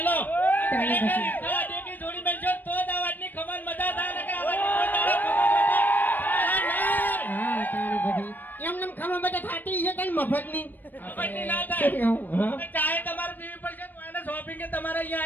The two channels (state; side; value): late; right; 0.089 ms